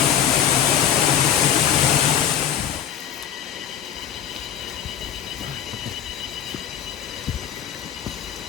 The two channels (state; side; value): quieter; right; 9.6 dB